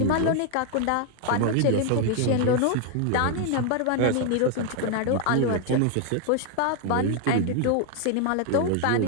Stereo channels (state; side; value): different; both; correlation 0.00